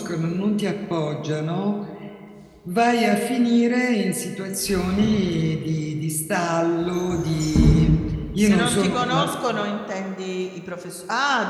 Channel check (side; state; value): both; identical; correlation 1.00